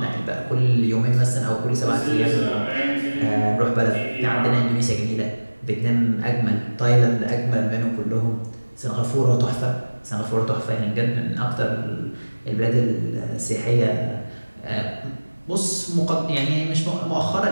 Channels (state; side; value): inverted; both; correlation -1.00